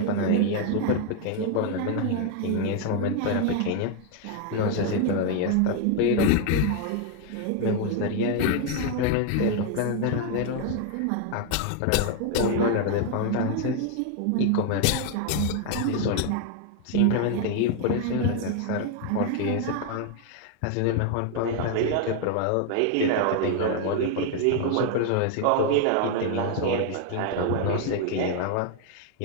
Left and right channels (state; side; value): different; both; correlation 0.00